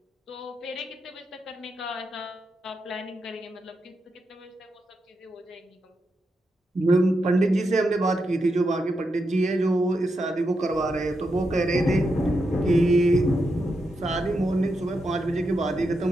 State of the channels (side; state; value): both; normal; correlation 0.85